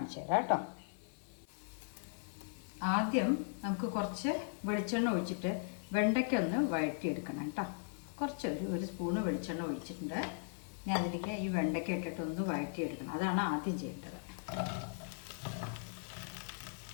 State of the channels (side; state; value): right; silent; digital silence